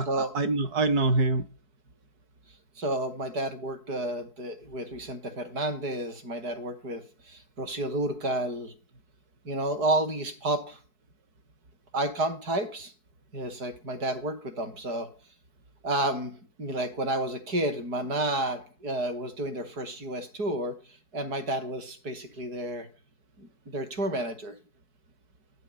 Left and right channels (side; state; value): left; late; 4.6 ms